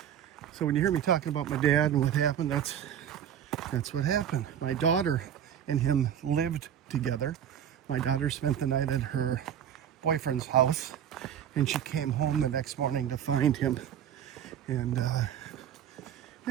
so when you hear me talking about my dad and what happened, that's what happened. My daughter and him lived together. My daughter spent the night at her boyfriend's house, and she came home the next morning to find him. And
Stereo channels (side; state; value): left; quieter; 9.5 dB